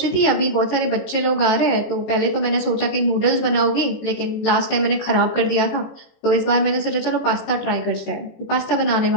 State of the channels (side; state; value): right; late; 18 ms